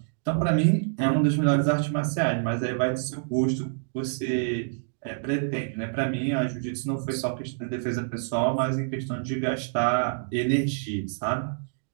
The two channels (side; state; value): left; silent; digital silence